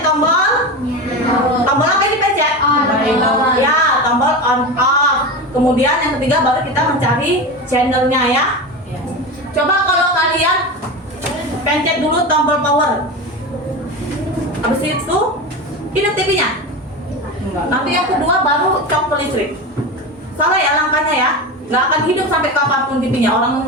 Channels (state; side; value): normal; both; correlation 0.24